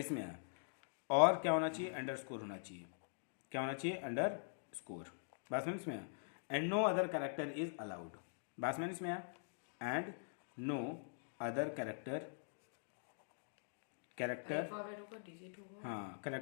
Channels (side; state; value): right; silent; digital silence